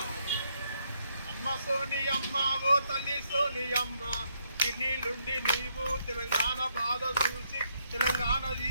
అమ్మ సోని అమ్మ ఓ తల్లి సోని అమ్మ ఇన్నిలుండి నీవు తెలంగాణ బాధ చూసి తెలంగాణ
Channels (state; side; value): inverted; both; correlation -0.74